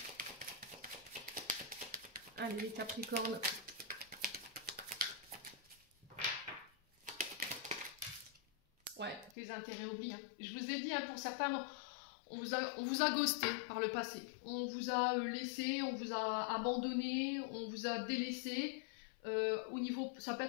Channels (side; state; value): right; drops out; at 9.3 s